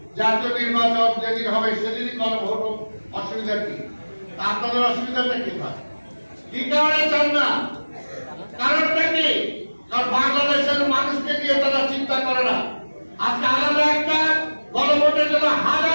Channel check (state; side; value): inverted; both; correlation -1.00